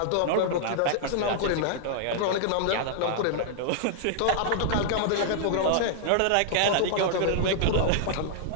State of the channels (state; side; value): different; both; correlation -0.01